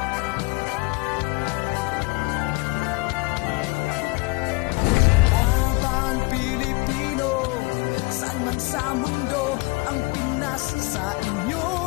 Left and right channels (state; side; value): quieter; right; 25.7 dB